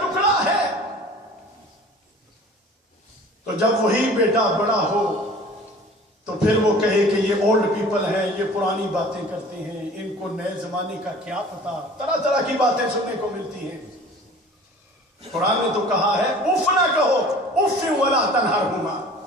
ہے۔ تو جب وہی بیٹا بڑا ہو تو پھر وہ کہے کہ یہ اولڈ پیپل ہیں، یہ پرانی باتیں کرتے ہیں، ان کو نئے زمانے کا کیا پتا، طرح طرح کی باتیں سننے کو ملتی ہیں۔ قرآن نے تو کہا ہے اف نہ کہو، اف ولا تنہرہما،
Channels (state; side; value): normal; both; correlation 0.45